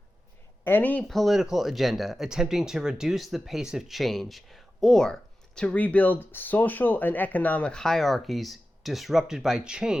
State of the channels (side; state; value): both; normal; correlation 0.94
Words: Any political agenda attempting to reduce the pace of change or to rebuild social and economic hierarchies disrupted by